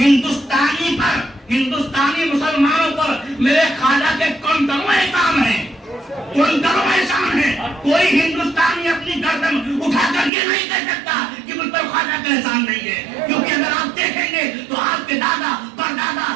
ہندوستانی مسلمانوں پر میرے خواجہ کے کنکروں احسان ہیں. کوئی ہندوستانی اپنی گردن اٹھا کر یہ نہیں کہہ سکتا کہ مجھ پر خواجہ کا احسان نہیں ہے, کیونکہ اگر آپ دیکھیں گے تو آپ کے دادا پردادا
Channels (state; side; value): drops out; left; at 10.3 s